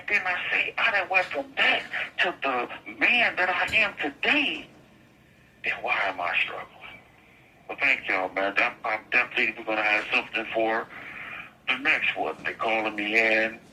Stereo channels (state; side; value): identical; both; correlation 1.00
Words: then I done went from that to the man that I am today. Then why am I struggling? Well, thank y'all, man. I'm definitely going to have something for the next one. They calling me in.